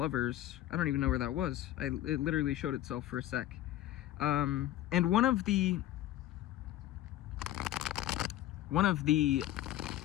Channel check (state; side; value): quieter; right; 13.7 dB